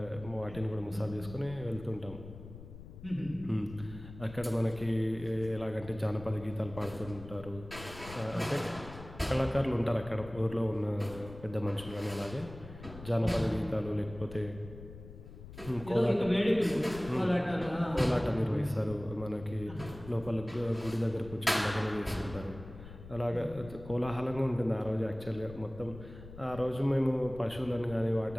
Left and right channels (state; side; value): noise; left; rumble, 14 dB below the sound